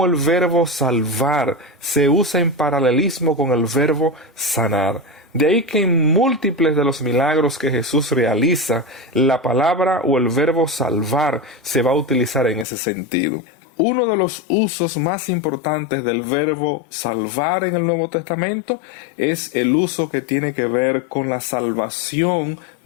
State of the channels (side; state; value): right; drops out; at 12.7 s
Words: el verbo salvar se usa en paralelismo con el verbo sanar. De ahí que en múltiples de los milagros que Jesús realiza, la palabra o el verbo salvar se va a utilizar en ese sentido. Uno de los usos más importantes del verbo salvar en el Nuevo Testamento es el uso que tiene que ver con la salvación